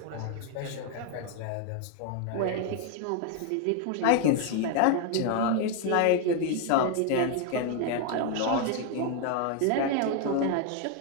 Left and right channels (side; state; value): both; different; correlation 0.01